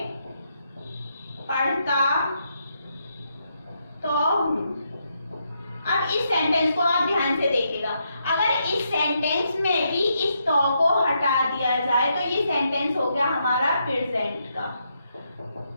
पढ़ता तो हूँ। अब इस सेंटेंस को आप ध्यान से देखिएगा। अगर इस सेंटेंस में भी इस तो को हटा दिया जाए तो ये सेंटेंस हो गया हमारा प्रेजेंट का।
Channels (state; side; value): inverted; both; correlation -0.79